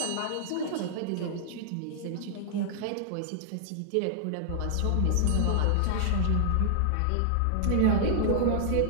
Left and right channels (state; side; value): different; both; correlation -0.01